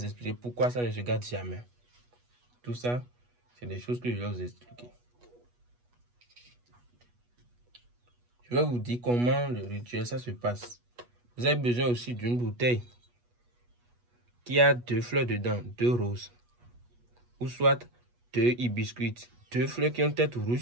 expliquer pourquoi ça ne se gâte jamais. Tout ça, c'est des choses que je vais vous expliquer. Je vais vous dire comment le rituel, ça se passe. Vous avez besoin aussi d'une bouteille qui a 2 fleurs dedans, 2 roses. Ou soit 2 hibiscus, 2 fleurs qui ont tête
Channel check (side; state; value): left; late; 8.3 ms